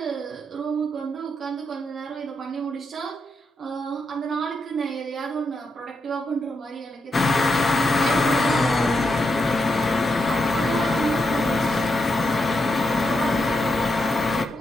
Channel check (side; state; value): both; normal; correlation 0.84